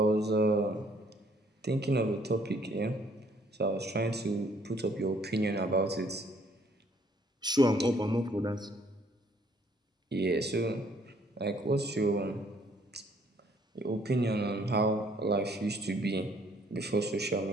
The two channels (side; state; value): both; normal; correlation 0.63